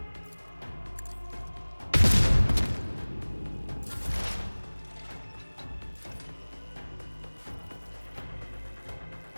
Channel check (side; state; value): both; inverted; correlation -1.00